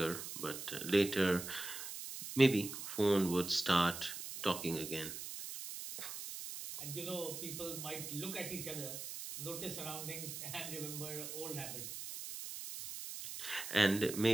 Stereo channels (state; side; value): noise; right; hiss, 7 dB below the sound